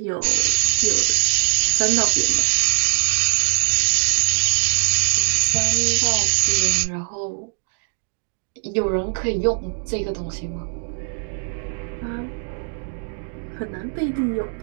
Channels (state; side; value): silent; left; digital silence